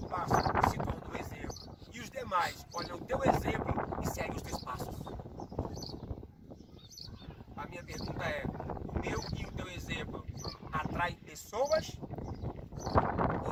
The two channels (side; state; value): both; identical; correlation 1.00